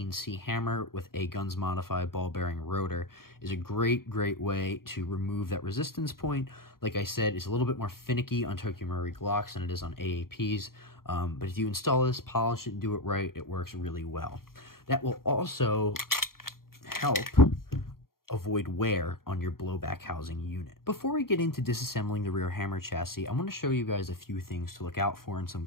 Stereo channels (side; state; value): right; late; 0.92 ms